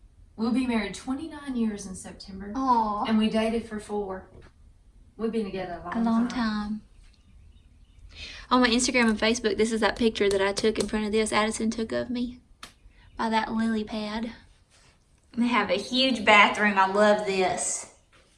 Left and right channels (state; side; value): identical; both; correlation 1.00